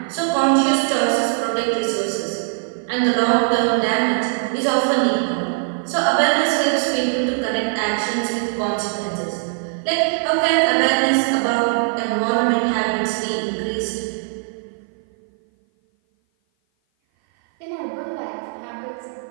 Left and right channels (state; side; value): silent; left; 56 dB below the other